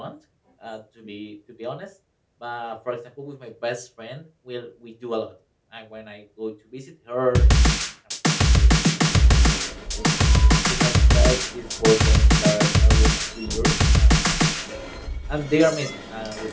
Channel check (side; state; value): both; identical; correlation 1.00